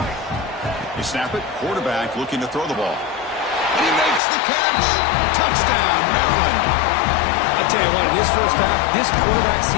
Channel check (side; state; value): right; drops out; at 4.2 s